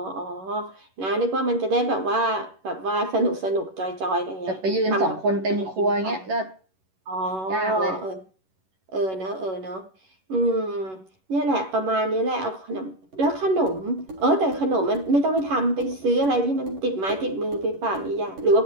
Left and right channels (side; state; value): left; late; 11 ms